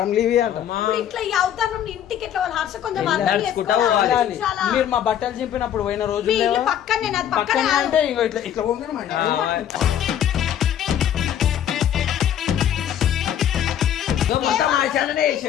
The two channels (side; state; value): right; quieter; 10.1 dB